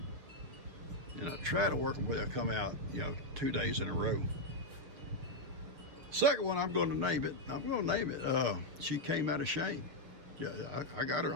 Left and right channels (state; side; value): late; left; 6.3 ms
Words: And I try to work them where they'll come out, 2 days in a row. Second one, I'm going to name it. She Came Out of Shame. Yeah, I got her